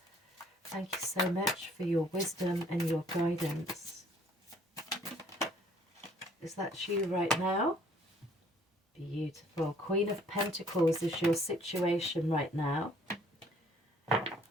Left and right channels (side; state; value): both; normal; correlation 0.59